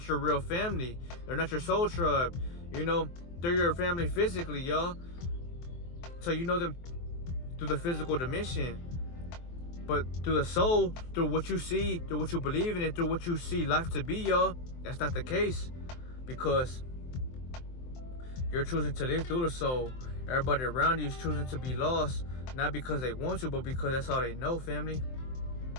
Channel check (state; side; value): late; right; 23 ms